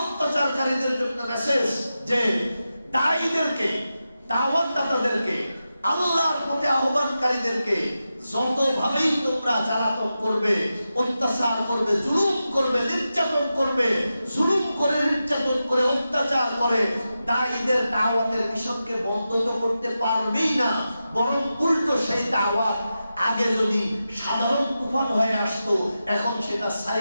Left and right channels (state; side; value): inverted; both; correlation -0.91